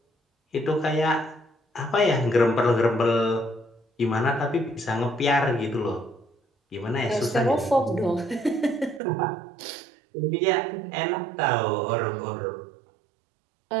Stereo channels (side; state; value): left; drops out; at 9.0 s